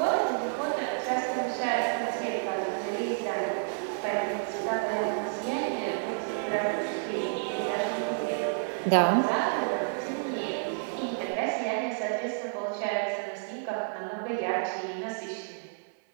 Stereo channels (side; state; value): left; silent; 58 dB below the other